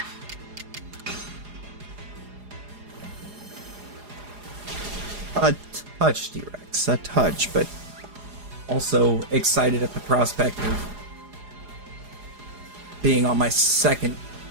A touch, T-Rex. A touch, but also excited at the prospect of being on my second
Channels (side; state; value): left; late; 4.9 ms